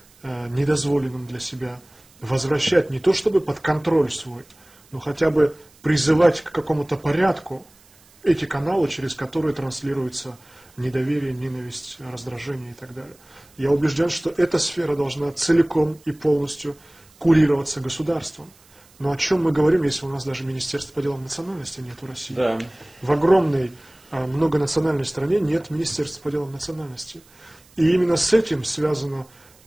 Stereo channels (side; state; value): right; noise; hiss, 28 dB below the sound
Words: недозволенным для себя возвращать не то чтобы под контроль свой, но хотя бы призывать к какому-то порядку эти каналы, через которые транслируется недоверие, ненависть, раздражение и так далее. Я убежден, что эта сфера должна целиком и полностью курироваться государством. Но о чем мы говорим, если у нас даже Министерства по делам национальности нет в России? Да. В огромной многонациональной стране нет Министерства по делам национальности. И именно с этим связано